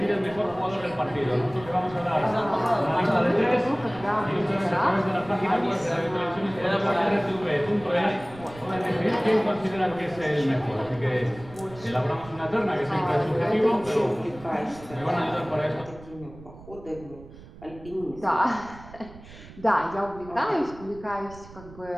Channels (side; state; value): right; noise; rumble, 18 dB below the sound